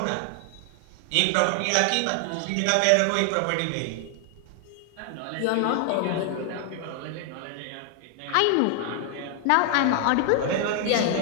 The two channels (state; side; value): different; both; correlation 0.00